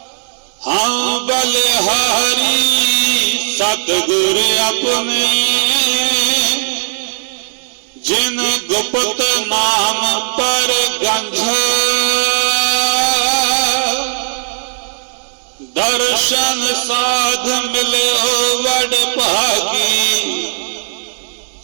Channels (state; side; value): silent; left; digital silence